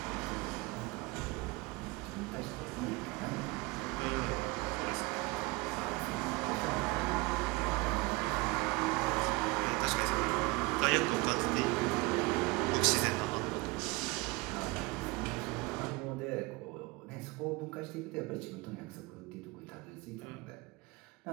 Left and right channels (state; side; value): quieter; left; 24.1 dB